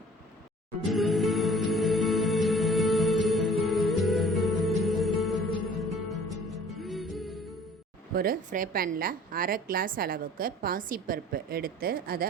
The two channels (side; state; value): both; normal; correlation 0.50